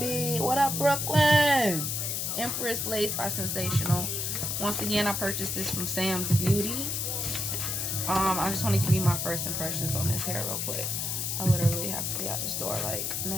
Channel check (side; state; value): left; noise; hiss, 1 dB below the sound